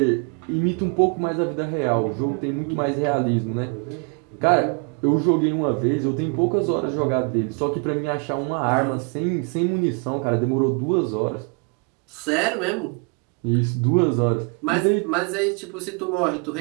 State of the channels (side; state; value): left; quieter; 36.0 dB